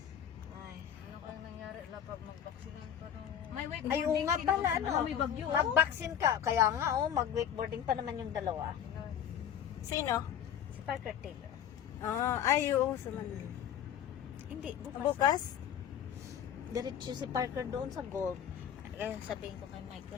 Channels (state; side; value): quieter; right; 9.2 dB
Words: Ay. Ano kaya nangyari? Lapag mag-vaksinan pa to. May wakeboarding. Ay, oo nga pala, ano. May bagyo. Mag-vaccine ka. Kaya nga, mag-wakeboarding pa naman yung dalawa. Sino? Si Parker Taylor. Ay, oo. Sumunod. Hindi, bukas. Bukas? Diretso si Parker doon sa golf. Kaya sabihin ko kay